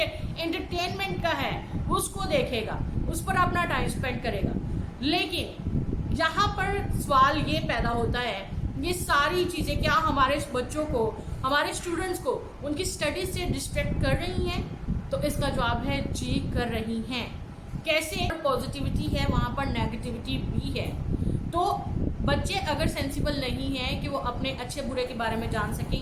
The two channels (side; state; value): both; identical; correlation 1.00